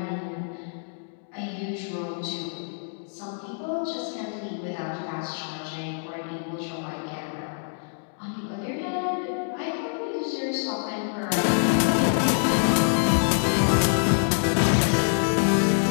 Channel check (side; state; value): right; silent; digital silence